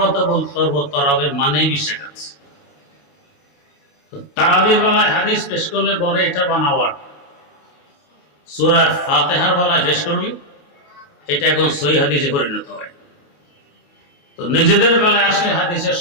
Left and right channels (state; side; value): late; right; 28 ms